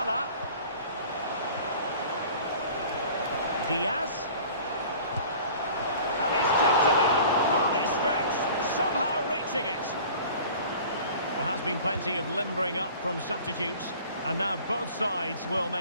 Diaz. And he's tipped it out, fully stretched, somehow reaching it. There has been plenty of limbering up from substitutes. And now both sides will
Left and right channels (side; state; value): both; inverted; correlation -0.45